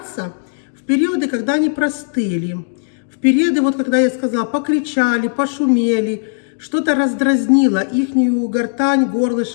в периоды, когда они простыли, в периоды, вот когда я сказала, покричали, пошумели, что-то раздразнило ихнюю гортань,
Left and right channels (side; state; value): right; silent; digital silence